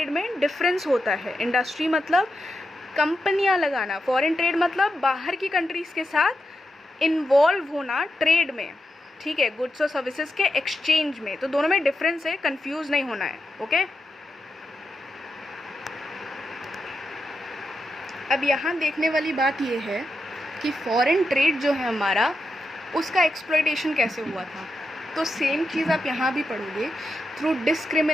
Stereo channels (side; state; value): both; normal; correlation 0.87